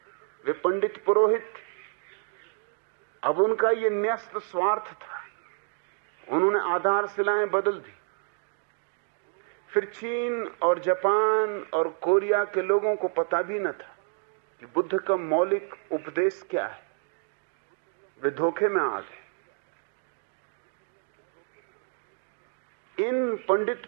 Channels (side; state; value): left; silent; digital silence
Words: वे पंडित पुरोहित। अब उनका ये न्यस्त स्वार्थ था, उन्होंने आधारशिलाएं बदल दी। फिर चीन और जापान और कोरिया के लोगों को पता भी न था कि बुद्ध का मौलिक उपदेश क्या है। वे धोखे में आ गए। इन